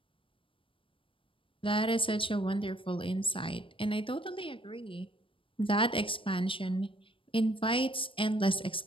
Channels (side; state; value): right; late; 0.25 ms